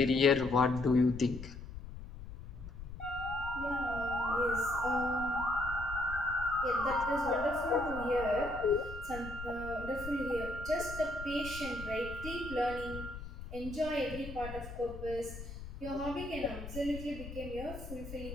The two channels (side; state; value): left; noise; rumble, 11 dB below the sound